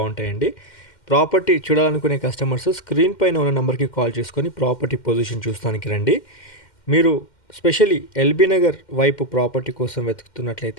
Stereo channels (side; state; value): right; late; 2.1 ms